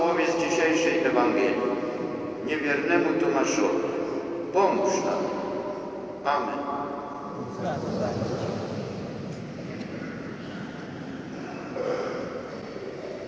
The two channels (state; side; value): identical; both; correlation 1.00